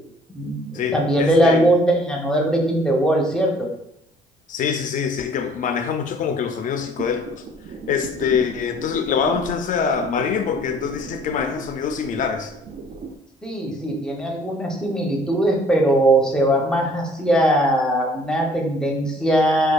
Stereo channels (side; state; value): both; normal; correlation 0.56